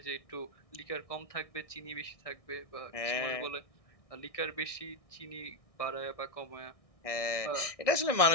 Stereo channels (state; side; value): late; right; 1.6 ms